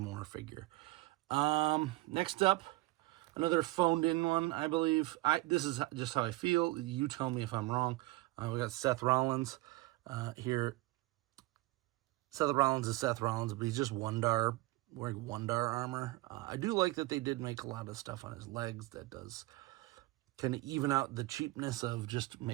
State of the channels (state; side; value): quieter; left; 20.3 dB